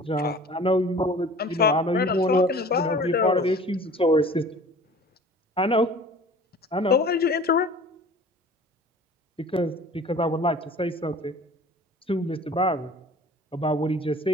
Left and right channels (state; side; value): normal; both; correlation 0.45